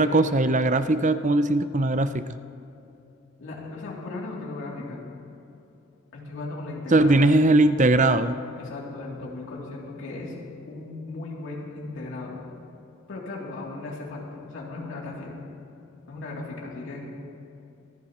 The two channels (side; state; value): both; normal; correlation 0.56